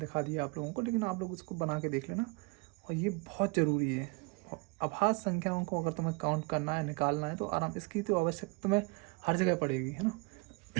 दिया आप लोगों को, लेकिन आप लोग इसको बना के देख लेना। और ये बहुत ज़रूरी है। अभाज्य संख्याओं को अगर तुम्हें काउंट करना है, निकालना है, तो आराम, इसकी तो आवश्यकता तुम्हें हर जगह पड़ेगी, है ना।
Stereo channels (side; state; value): left; quieter; 29.3 dB